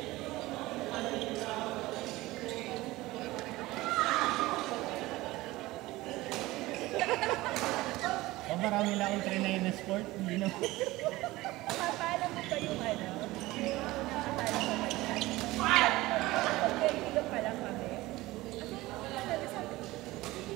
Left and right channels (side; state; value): left; quieter; 19.0 dB